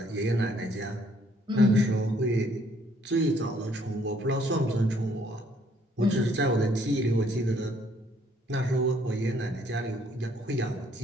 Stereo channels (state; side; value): normal; both; correlation 0.65